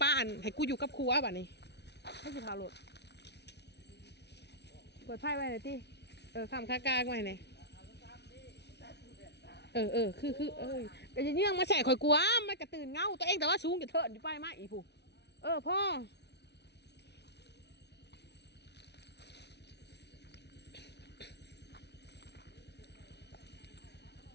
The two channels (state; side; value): late; right; 0.50 ms